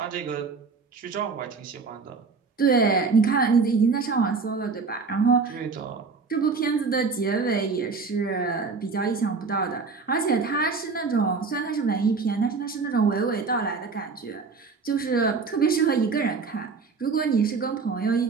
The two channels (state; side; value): quieter; left; 4.7 dB